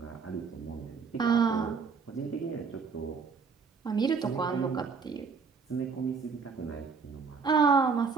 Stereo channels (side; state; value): left; quieter; 5.3 dB